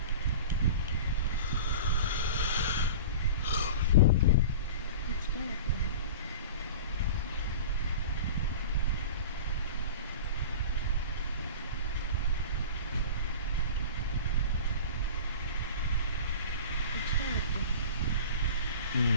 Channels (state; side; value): inverted; both; correlation -0.35